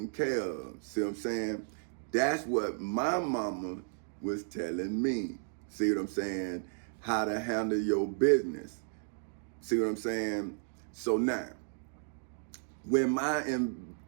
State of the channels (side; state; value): left; silent; digital silence